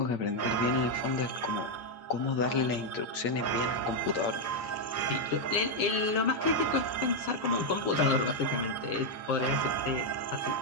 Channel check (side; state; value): right; late; 8.5 ms